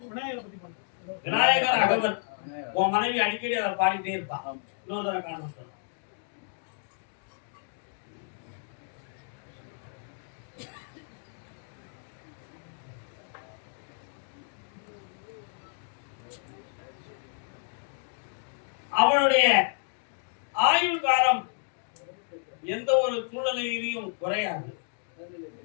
விநாயகர் அகவன். உன் மனைவி அடிக்கடி அதை பாடிட்டே இருப்பான். இன்னொரு தடவை காண அவனுடைய ஆயுள் காலம் எந்த ஒரு சூழ்நிலையிலையும் குறையாது.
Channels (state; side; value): silent; right; digital silence